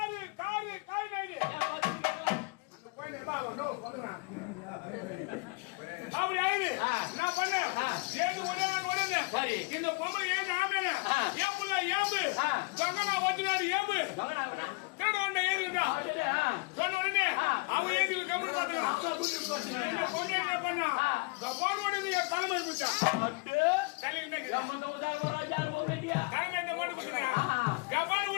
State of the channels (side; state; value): right; quieter; 28.7 dB